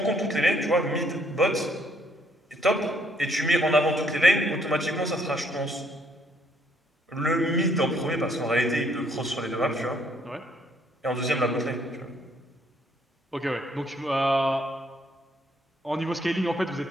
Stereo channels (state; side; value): normal; both; correlation 0.68